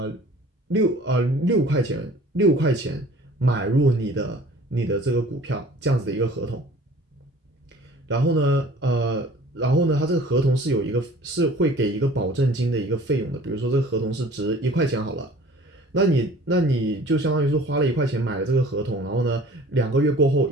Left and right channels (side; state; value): both; normal; correlation 0.48